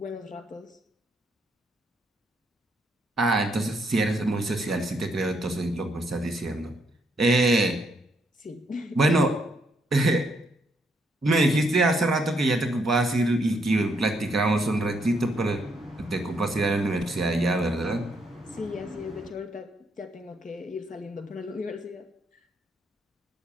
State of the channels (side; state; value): both; normal; correlation 0.74